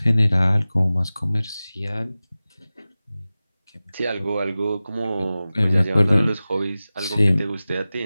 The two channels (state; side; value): inverted; both; correlation -0.96